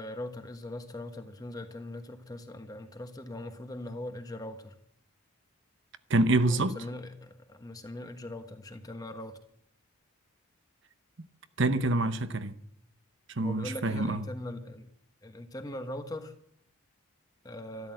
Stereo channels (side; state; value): both; normal; correlation 0.58